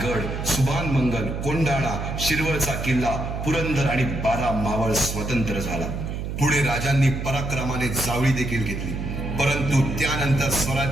गड, सुभान मंगल, कोंढाणा, शिरवळचा किल्ला, पुरंदर आणि 12 मावळ स्वतंत्र झाला. पुढे राजांनी पराक्रमाने जावळी देखील घेतली. परंतु त्यानंतर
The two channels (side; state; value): right; noise; hum, 4 dB below the sound